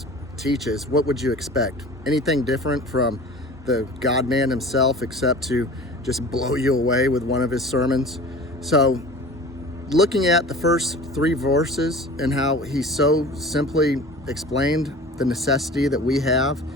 teaches. What would you expect? Anything different from the God-man himself, except to just blow you away with one of his sermons? So looking at the first three verses and how he so simply explained the necessity that we have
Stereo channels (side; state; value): both; normal; correlation 0.40